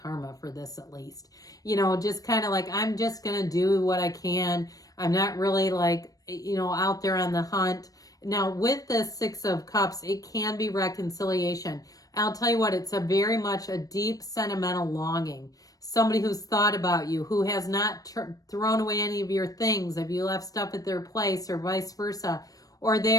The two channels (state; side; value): late; right; 0.18 ms